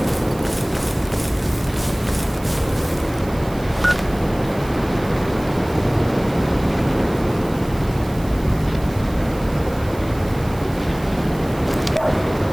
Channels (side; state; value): right; noise; hiss, 20 dB below the sound